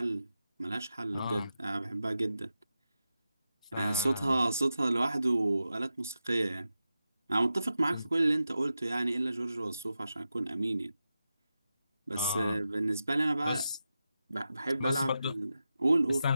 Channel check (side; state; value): both; inverted; correlation -0.90